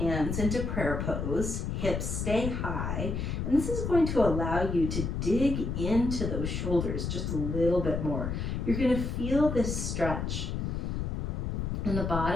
into prayer pose, hips stay high, and this is going to allow you to dig into those shoulders just a little bit more. You're going to feel this stretch in the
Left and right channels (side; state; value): left; noise; rumble, 2 dB below the sound